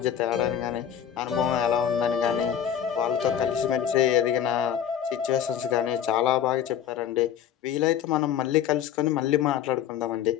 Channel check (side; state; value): right; quieter; 9.5 dB